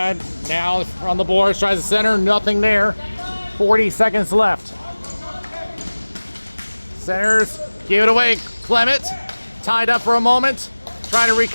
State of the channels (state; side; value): inverted; both; correlation -1.00